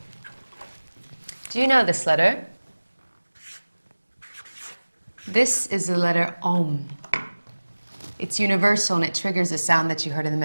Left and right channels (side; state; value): both; inverted; correlation -1.00